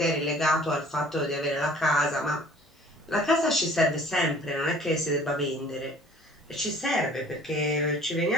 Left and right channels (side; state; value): both; normal; correlation 0.51